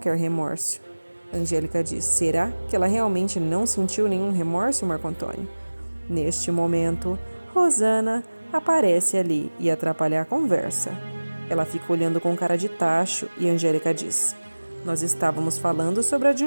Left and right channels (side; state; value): both; inverted; correlation -1.00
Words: remorso? Angélica diz: "Será que ela realmente não sentiu nenhum remorso, Marco Antônio?" Neste momento, Rosana aparece ali e atrapalha a conversa. Ela fica olhando com cara de tacho e Angélica diz: "Nós estávamos falando sobre a